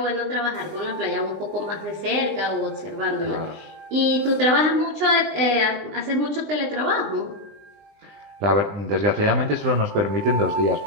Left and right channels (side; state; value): left; late; 20 ms